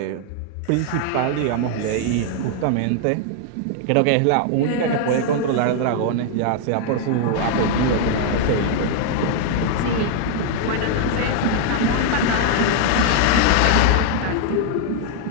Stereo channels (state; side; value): different; both; correlation 0.00